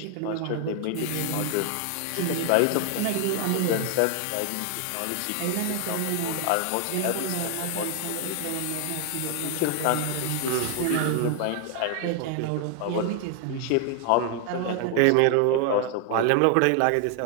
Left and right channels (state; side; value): different; both; correlation 0.00